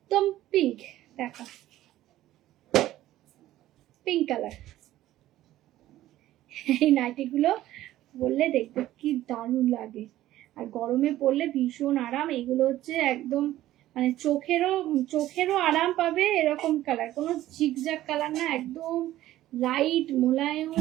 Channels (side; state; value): left; quieter; 14.4 dB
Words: পিঙ্ক। দেখো পিঙ্ক কালার। এই নাইটিগুলো পরলে দেখতে কি দারুণ লাগে, আর গরমে পরলে ভীষণ আরাম। এগুলো হচ্ছে একদম মানে চোখেরও আরাম পাবে, এরকম কালার, কোনো ঝিকঝাক কালার না, একদম লাইট মোলায়েম,